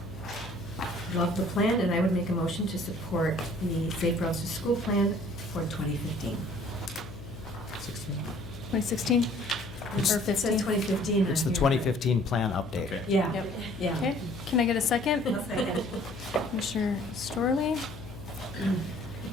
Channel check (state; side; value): noise; left; hum, 14 dB below the sound